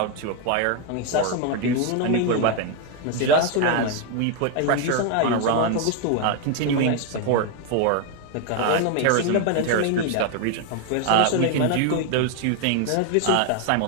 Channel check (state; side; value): different; both; correlation 0.01